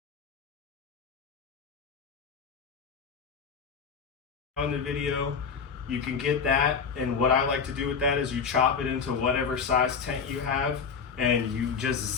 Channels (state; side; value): quieter; right; 5.9 dB